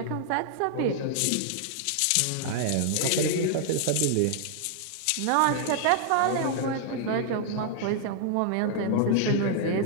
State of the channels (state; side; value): different; both; correlation -0.01